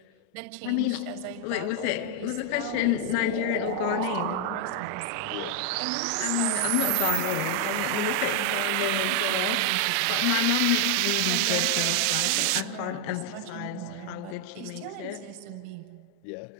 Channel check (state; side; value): different; both; correlation 0.00